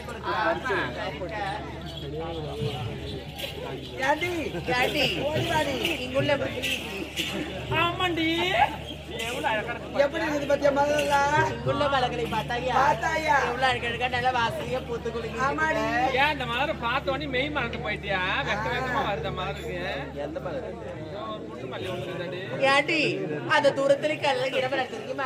இங்குள்ள ஆமாண்டி, எப்படி இருக்குது பத்தியா மலர்லாம்? இங்குள்ள மலர்களை பார்த்தாயா எவ்வளவு அழகா நல்ல வாசனையா பூத்து குளிக்க. ஏன் இந்த மலரை பார்த்தோன்னே மெய் மறந்து போயிட்டியா? வெக்க வெக்கமா வருத மலருக்கு. எந்த மலர்? புட்டு மல்லி ஒண்ணு. ஏண்டி அந்த தூரத்துல கல்ல இடமல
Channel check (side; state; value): both; identical; correlation 1.00